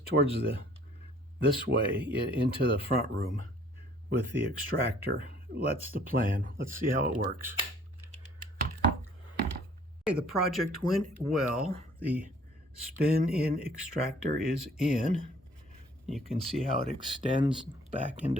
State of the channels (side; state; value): both; normal; correlation 0.56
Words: towards this way into the front room with the extractor. That's the plan. Let's see how it works. Okay, the project went well. The spin-in extractor is in. You can see how it extends back